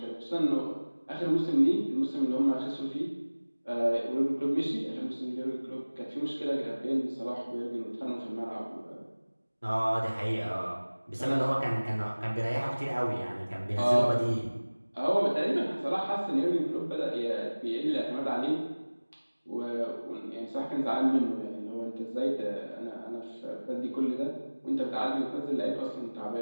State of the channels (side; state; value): both; inverted; correlation -1.00